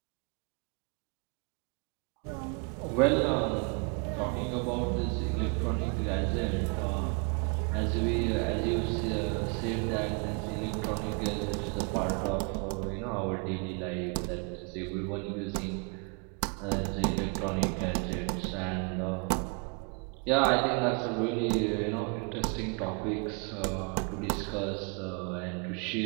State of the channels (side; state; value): left; quieter; 35.8 dB